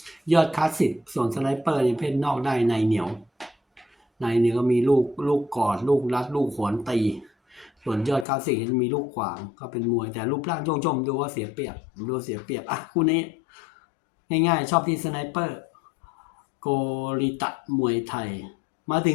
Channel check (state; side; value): drops out; right; at 8.2 s